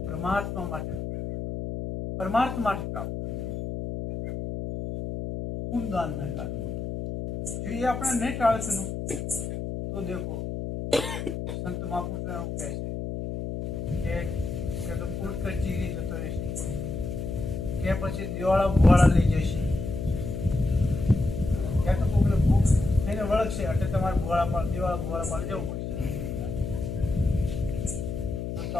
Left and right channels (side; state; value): left; noise; hum, 5 dB below the sound